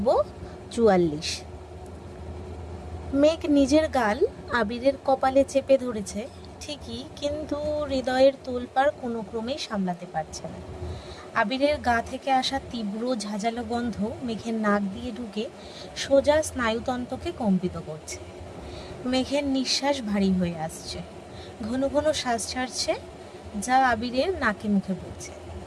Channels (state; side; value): identical; both; correlation 1.00